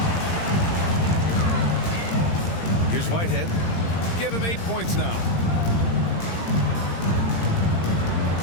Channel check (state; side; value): late; right; 17 ms